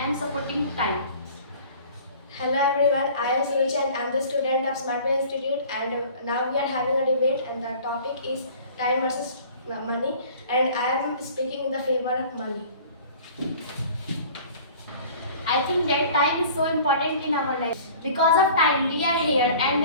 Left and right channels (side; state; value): both; inverted; correlation -0.47